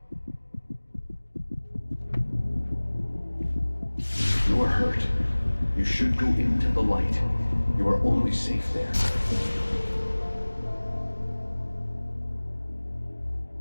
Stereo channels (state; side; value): inverted; both; correlation -1.00